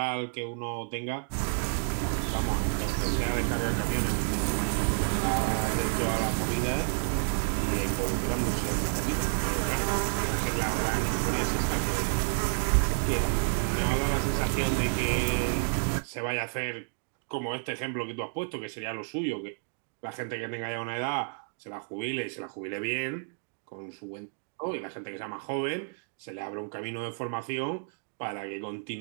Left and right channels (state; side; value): silent; left; 58 dB below the other